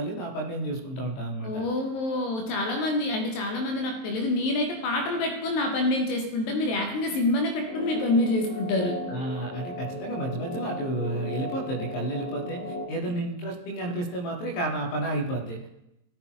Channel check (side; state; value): right; late; 23 ms